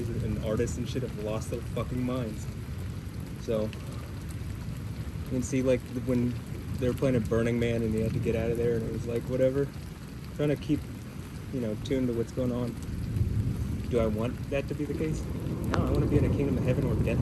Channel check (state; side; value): identical; both; correlation 1.00